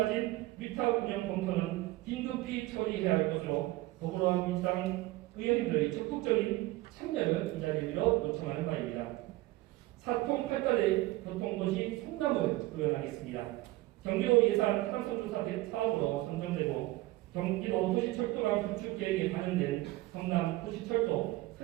위탁 운영 검토는 긴급히 처리해야 할 것으로 더불어민주당 의원님들의 적극적인 참여를 이 자리에 빌어 요청하는 바입니다. 사통팔달의 교통도시 성남을 구현하겠습니다. 경기도 예산 타당성조사 사업으로 선정되고 경기도 도시철도망 구축 계획에 반영된 성남 도시철도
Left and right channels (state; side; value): quieter; left; 18.8 dB